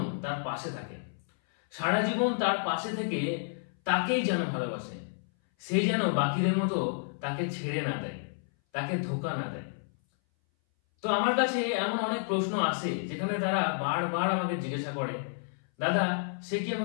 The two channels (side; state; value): right; silent; 58 dB below the other